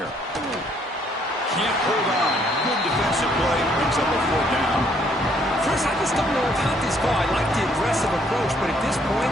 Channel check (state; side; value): normal; both; correlation 0.66